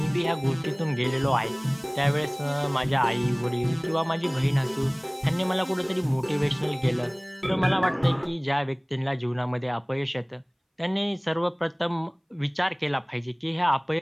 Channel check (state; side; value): identical; both; correlation 1.00